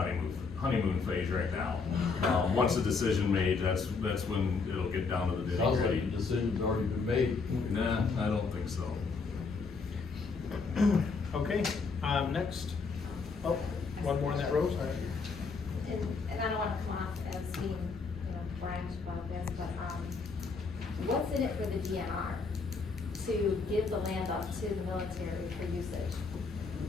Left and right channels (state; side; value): quieter; right; 4.6 dB